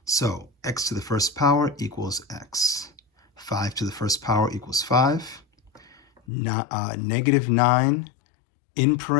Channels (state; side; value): drops out; right; at 6.2 s